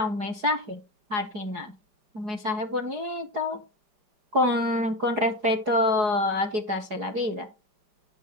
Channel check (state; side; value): late; left; 4.8 ms